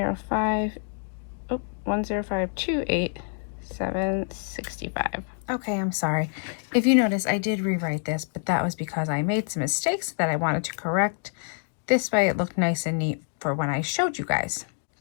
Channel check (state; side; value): silent; right; 60 dB below the other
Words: $105,287.65. Okay, I'm sorry. If you notice, I did rewrite this, but that was because I made some mistakes that I wanted to correct. This way it looked nice and neat for when I showed you guys.